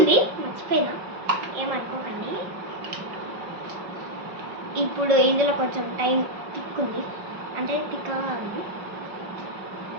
మర్చిపోయినా, ఏమనుకోకండి. ఇప్పుడు ఇందులో కొంచెం టైం తిక్కుంది, అంటే తిక్కగా ఉంది.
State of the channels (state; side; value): late; left; 5.5 ms